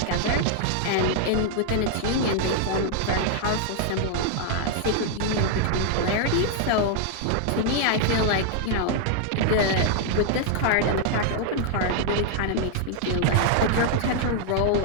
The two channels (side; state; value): both; different; correlation 0.00